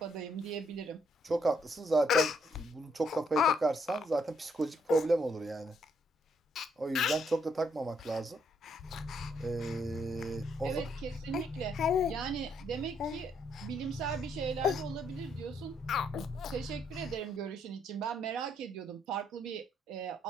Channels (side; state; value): both; normal; correlation 0.72